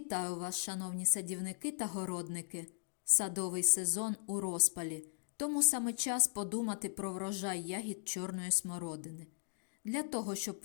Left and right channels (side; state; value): right; silent; digital silence